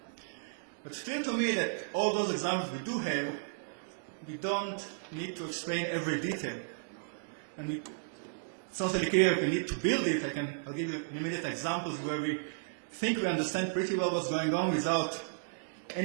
But it's clear to me that all those examples we do have, we don't need to explain every detail. And it's not really clear if we need to build it. I'll give you immediate examples where we think we understand pretty well what's going on without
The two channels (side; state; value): left; silent; digital silence